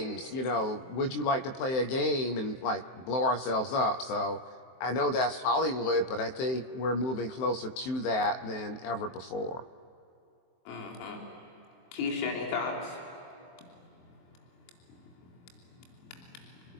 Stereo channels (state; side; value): late; right; 23 ms